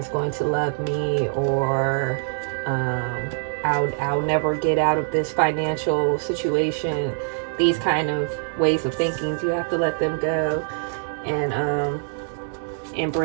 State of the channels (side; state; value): left; silent; digital silence